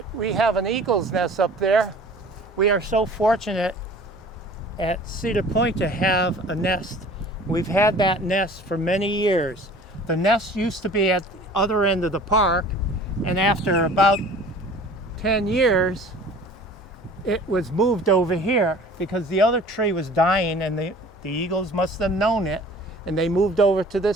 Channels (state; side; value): normal; both; correlation 0.46